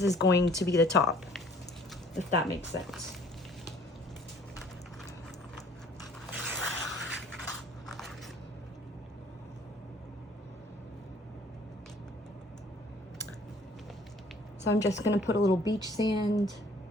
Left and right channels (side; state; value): both; normal; correlation 0.56